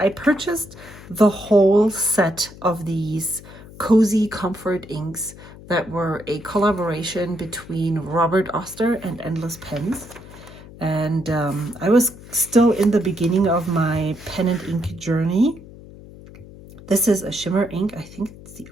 purchased the whole set of these Cozy Comfort inks that were a collaboration between Robert Oster and Endless Pens. And I was still in the beginning of my pen and ink journey. This is a shimmer ink. I think it's the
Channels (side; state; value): left; noise; hum, 18 dB below the sound